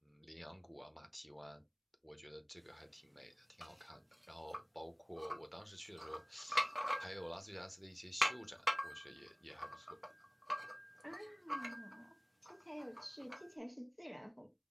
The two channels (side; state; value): both; identical; correlation 1.00